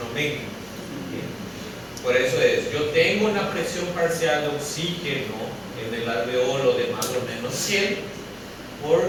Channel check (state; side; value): identical; both; correlation 1.00